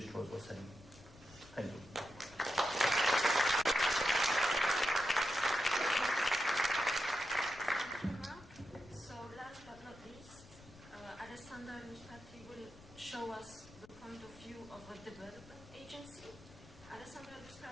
was saying. Thank you. So last but not least, Alessandra Lustrati will show us the point of view of a development agency. Alessandra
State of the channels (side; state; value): left; noise; rumble, 21 dB below the sound